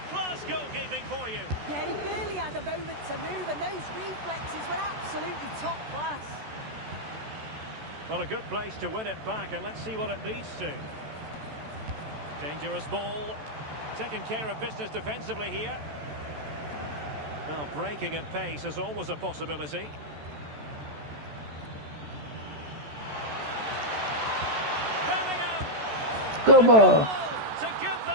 goalkeeping for you. Yeah, he barely had a moment to move, and those reflexes were absolutely top class. Well, a good place to win it back, and let's see what it leads to. Dangerous ball. Taking care of business defensively here. Well, breaking at pace is always a possibility. Bellingham! Good ball. To give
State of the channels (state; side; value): late; left; 14 ms